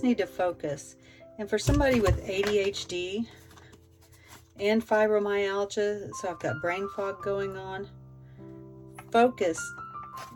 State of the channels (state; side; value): identical; both; correlation 1.00